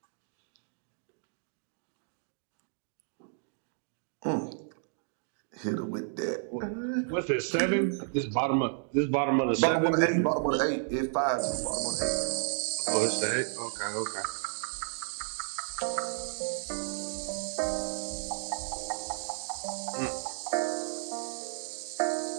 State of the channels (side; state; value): left; silent; digital silence